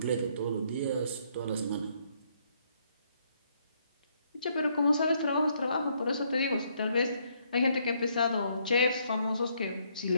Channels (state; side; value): inverted; both; correlation -0.70